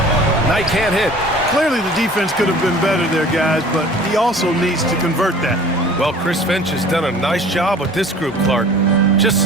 Knight can't hit. Clearly the defense could have been better there, guys, but he also needs to convert that. Well, Chris Finch has done a nice job with this group, Clark. Just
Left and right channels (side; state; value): both; normal; correlation 0.46